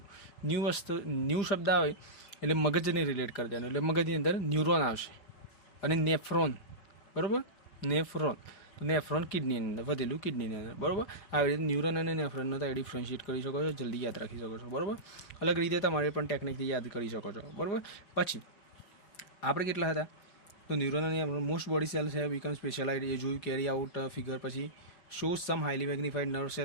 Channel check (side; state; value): right; late; 5.0 ms